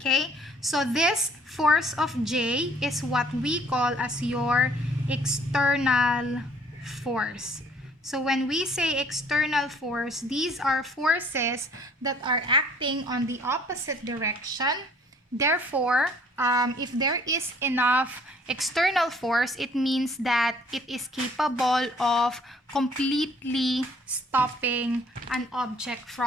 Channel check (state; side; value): normal; both; correlation 0.58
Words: so this force of J is what we call as your external force. So when we say external force, these are forces that are acting on the opposite direction. Therefore, if there is enough external force, it means that it is capable of completely stopping an object